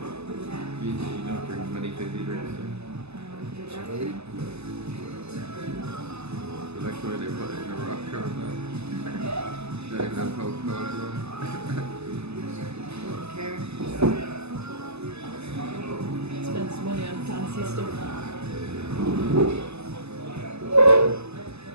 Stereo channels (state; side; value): late; left; 0.79 ms